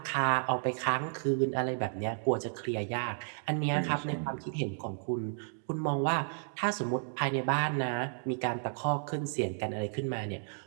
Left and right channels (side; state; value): left; silent; 56 dB below the other